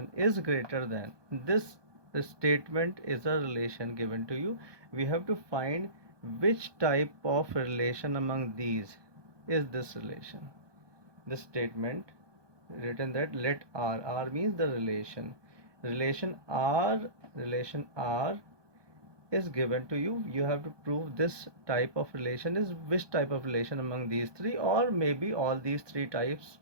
is greater than this. The statement is a relation given to you. We have to find which type of relation among these is this relation. This statement written that let R means the relation R is given to you. You have to prove this type of relation is which type of relation among these 3, or maybe all these 3 types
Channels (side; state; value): left; late; 1.2 ms